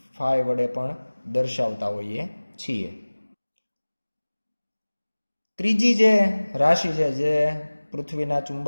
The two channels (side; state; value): both; inverted; correlation -1.00